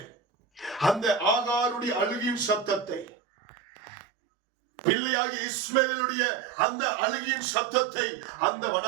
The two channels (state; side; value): drops out; left; at 3.1 s